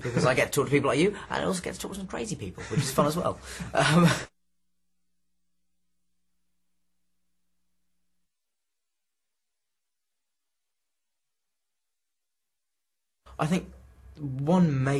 because I get to talk to people like you, and I also get to talk to some crazy people, which is fun as well. I think one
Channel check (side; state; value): both; identical; correlation 1.00